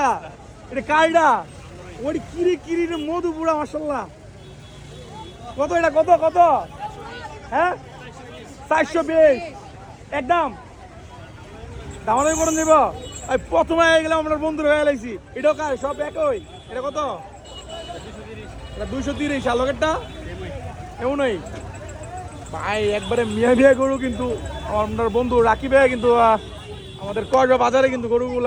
এটা কাইডা? ওই কিরি কিরি রে মধু পুরা, মাশাল্লাহ। কত এটা? কত কত? হ্যাঁ, 420 একদম। দামাদামি করে নিব। প্রথমে হয়ে গেলাম, আপনার বন্ধুরা হয়ে গেছি। এটাও কার? সব একই। এটা কত? 230। আর লগেরটা এমনই ভাই, একবারে মিয়া মিয়া গরু। কিন্তু আপনার বন্ধু রাকিব ভাই কিন্তু আমাদের কসবা বাজারে কিন্তু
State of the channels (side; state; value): both; identical; correlation 1.00